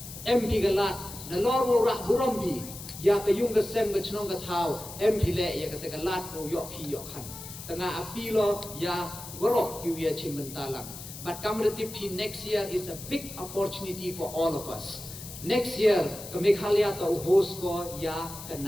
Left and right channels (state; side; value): noise; left; hiss, 12 dB below the sound